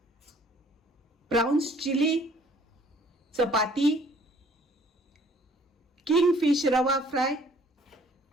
प्राउन्स चिली, चपाती, किंग फिश रवा फ्राय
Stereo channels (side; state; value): both; normal; correlation 0.57